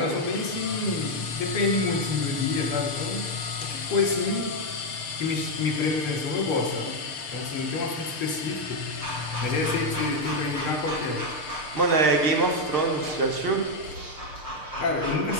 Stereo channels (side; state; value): right; late; 6.7 ms